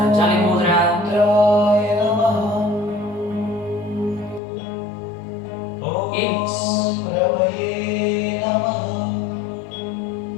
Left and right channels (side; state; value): right; drops out; at 4.4 s